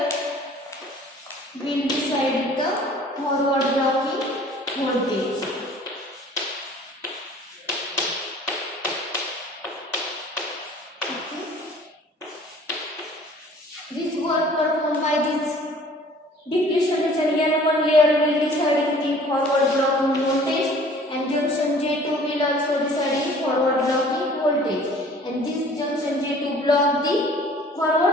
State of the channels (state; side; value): normal; both; correlation 0.50